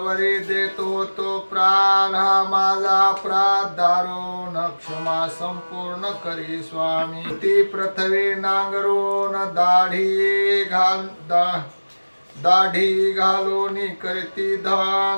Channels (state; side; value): inverted; both; correlation -1.00